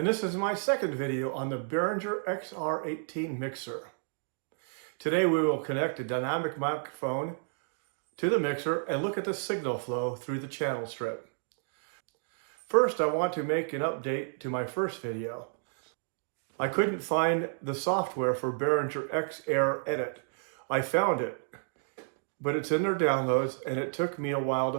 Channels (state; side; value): silent; left; digital silence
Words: this is my second video on the Behringer XR18 mixer. Today we will connect a dynamic microphone to the mixer and look at the signal flow through the channel strip. First, I want to make an update to my first video. I couldn't find the software for Behringer XR Edit. I found it, but it's in their downloads and it took me a while to